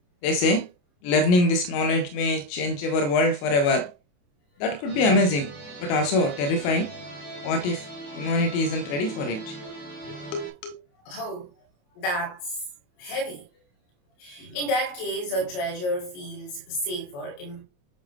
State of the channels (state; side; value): late; right; 28 ms